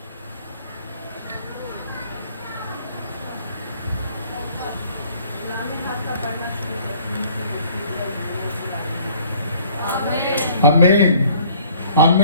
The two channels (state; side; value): inverted; both; correlation -0.56